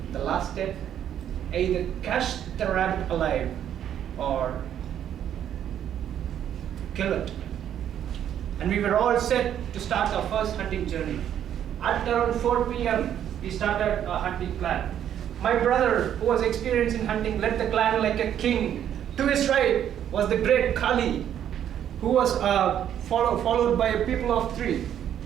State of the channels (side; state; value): left; quieter; 10.1 dB